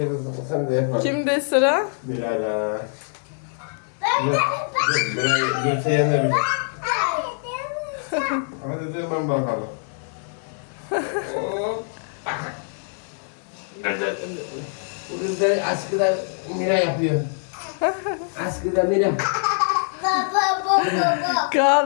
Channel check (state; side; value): silent; right; 62 dB below the other